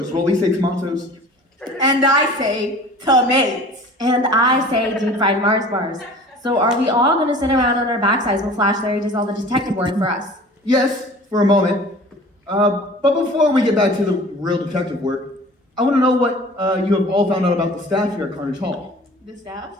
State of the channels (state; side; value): normal; both; correlation 0.44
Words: Well, we say tomatoes. And I say tomatoes. And I say deep fried Mars bars. So are we all gonna sit around on our backsides while Flash Larry does all the detective work for us? Yes, for a moment. But before we get back to the real detective work, I want to know what you have all found out about the staff here at Carnage Hall. The staff?